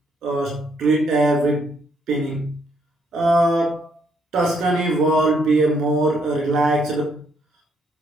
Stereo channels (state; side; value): normal; both; correlation 0.72